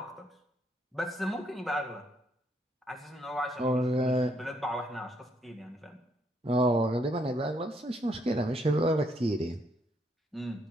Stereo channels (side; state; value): both; normal; correlation 0.72